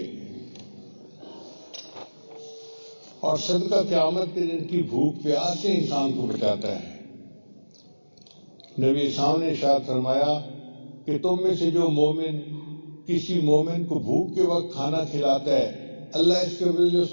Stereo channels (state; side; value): inverted; both; correlation -1.00